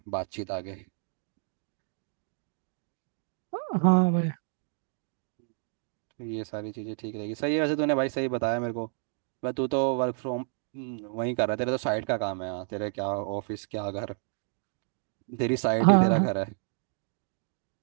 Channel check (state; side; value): silent; left; 58 dB below the other